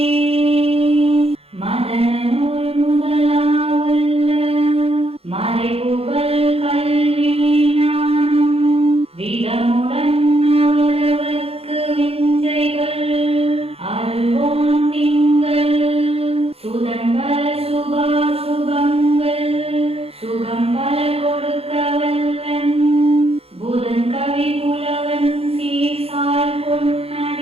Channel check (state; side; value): late; left; 0.29 ms